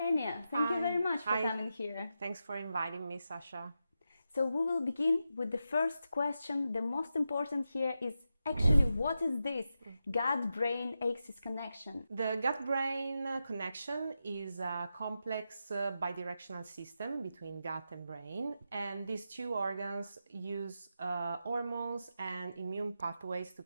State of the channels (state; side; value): inverted; both; correlation -0.88